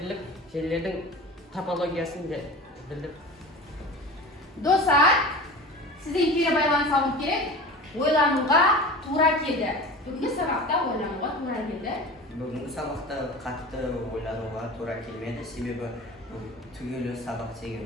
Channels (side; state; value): both; normal; correlation 0.35